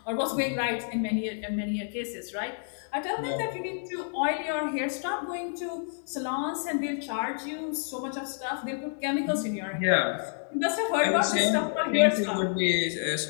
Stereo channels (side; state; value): right; silent; digital silence